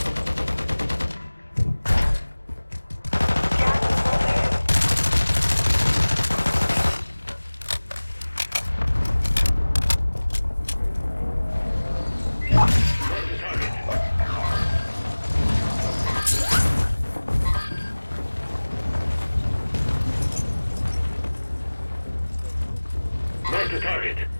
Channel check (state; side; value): inverted; both; correlation -1.00